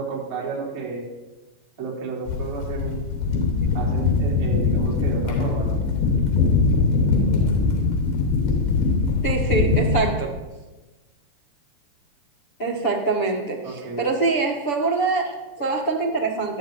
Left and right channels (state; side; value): late; right; 6.9 ms